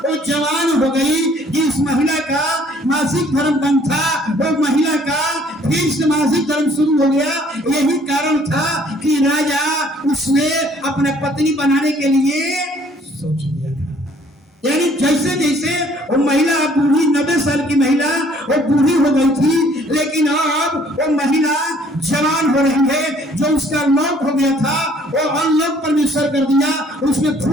जवान हो गई। जिस महिला का मासिक धर्म बंद था, वो महिला का फिर से मासिक धर्म शुरू हो गया। यही कारण था कि राजा उसने अपने पत्नी बनाने के लिए सोच लिया था। यानी जैसे जैसे वो महिला बूढ़ी, 90 साल की महिला वो बूढ़ी हो गई थी, लेकिन अब वो महिला जवान हो रही है। जो उसका लॉक हो गया था वो अनलॉक परमेश्वर कर दिया, उसमें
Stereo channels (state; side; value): normal; both; correlation 0.60